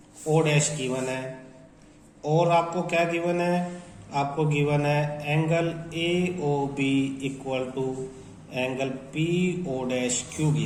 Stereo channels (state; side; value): identical; both; correlation 1.00